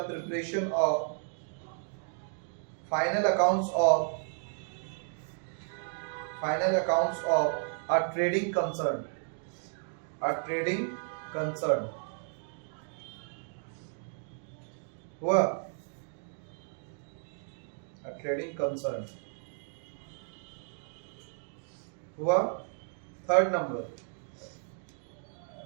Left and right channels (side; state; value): left; silent; 56 dB below the other